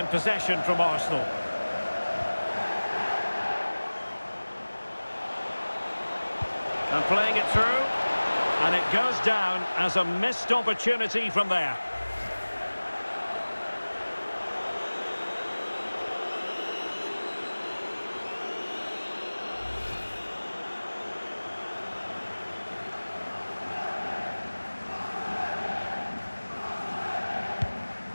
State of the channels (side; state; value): both; inverted; correlation -1.00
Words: possession from Arsenal. And playing it through, and it goes down as a missed opportunity from there.